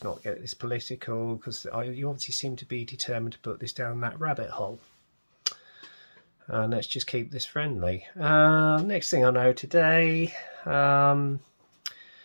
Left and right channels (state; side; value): inverted; both; correlation -1.00